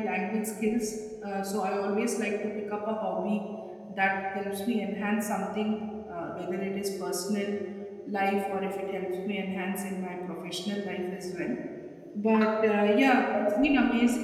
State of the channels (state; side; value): identical; both; correlation 1.00